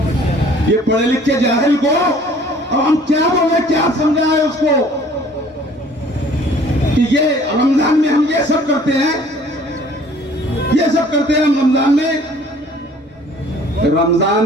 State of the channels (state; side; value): normal; both; correlation 0.53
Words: ये पढ़े लिखे जाहिल को अब हम क्या बोले, क्या समझाए उसको कि ये रमजान में हम ये सब करते हैं, ये सब करते हैं हम रमजान में।